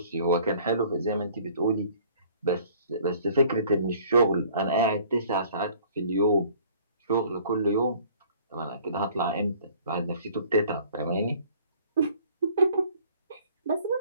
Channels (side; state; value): both; inverted; correlation -0.54